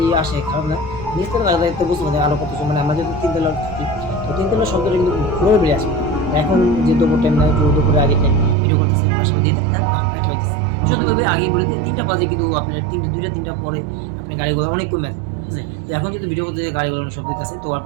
আসে খারাপ না নিচতলা লাগলে তো বুঝতে পারি আরো কত মানে আমরা যদি তিনতলা থাকি তো তিনতলা শব্দটা কিন্তু ঘুরে বেরিয়ে আসে এখন যে দুপুর টাইম না দুপুরে আগে টাইম ভিডিও করতেছে বাসা দিয়ে একটা হইতেছে সত্যি আগে বলে 3টা বাজে কিন্তু আপনার 2টা 3টা পরে আপনার গাড়িগুলো অনেক কমে আছে ঠিক আছে। তো এখন যদি ভিডিও করতে গাড়িগুলো অনেক শব্দ আছে তো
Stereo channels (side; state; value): left; drops out; at 8.6 s